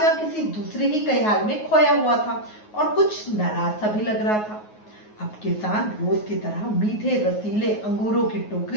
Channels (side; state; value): right; late; 9.4 ms